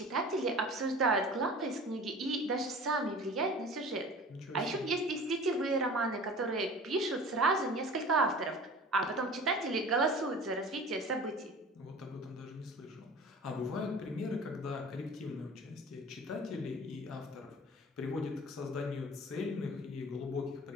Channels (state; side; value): normal; both; correlation 0.40